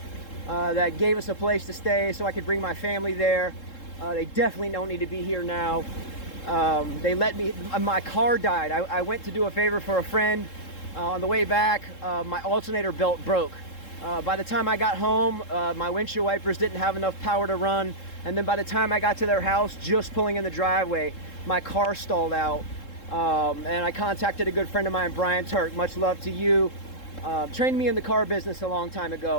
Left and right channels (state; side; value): late; right; 3.7 ms